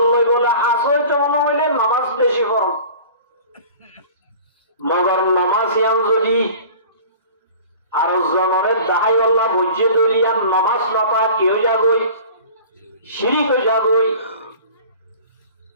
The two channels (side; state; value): both; inverted; correlation -0.43